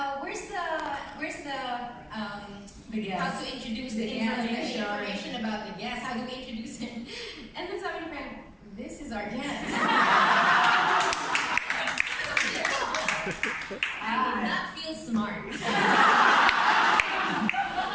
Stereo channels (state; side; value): identical; both; correlation 1.00